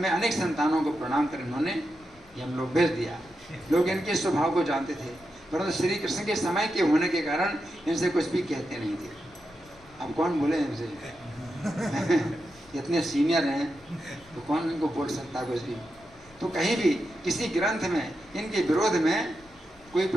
अनेक संतानों को प्रणाम कर इन्होंने ये हम लोग भेज दिया। लोग इनके स्वभाव को जानते थे, परंतु श्री कृष्ण के समय के होने के कारण इनसे कुछ भी कहते नहीं थे। अब कौन बोले इनसे इतने सीनियर हैं तो कौन इनको बोल सकता कुछ भी। तो कहीं भी किसी ग्रंथ में इनके विरोध में कोई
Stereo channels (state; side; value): noise; left; rumble, 27 dB below the sound